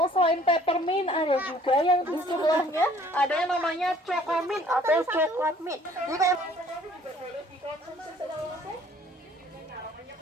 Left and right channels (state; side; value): normal; both; correlation 0.57